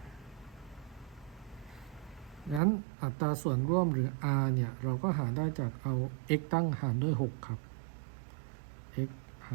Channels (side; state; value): left; drops out; at 2.6 s